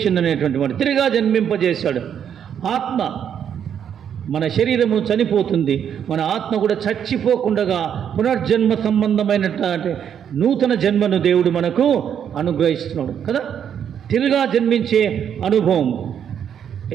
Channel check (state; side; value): quieter; left; 8.6 dB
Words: అనేటువంటి వాడు తిరిగా జన్మింపజేశాడు. ఆత్మ, మన శరీరము చనిపోతుంది, మన ఆత్మ కూడా చచ్చిపోకుండా పునర్జన్మ సంబంధమైనటువంటి నూతన జన్మను దేవుడు మనకు అనుగ్రహిస్తున్నాడు కదా. తిరిగా జన్మించే అనుభవం.